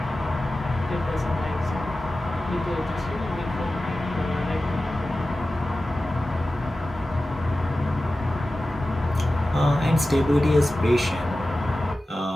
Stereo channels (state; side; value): normal; both; correlation 0.95